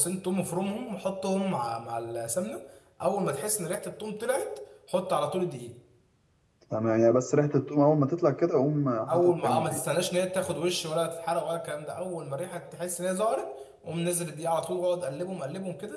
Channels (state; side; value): identical; both; correlation 1.00